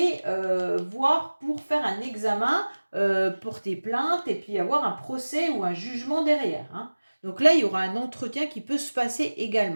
voir pour faire un examen, porter plainte et puis avoir un procès ou un jugement derrière. Hein. Donc là, il y aura un entretien qui peut se passer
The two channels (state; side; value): inverted; both; correlation -1.00